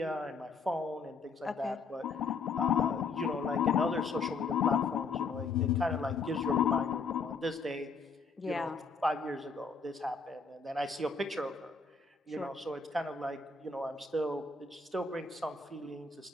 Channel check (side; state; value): right; quieter; 4.5 dB